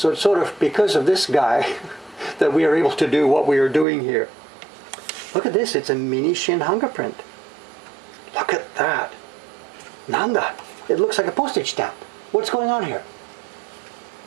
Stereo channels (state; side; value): drops out; left; at 3.9 s